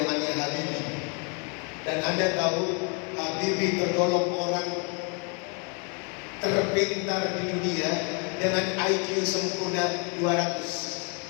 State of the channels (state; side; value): quieter; right; 34.0 dB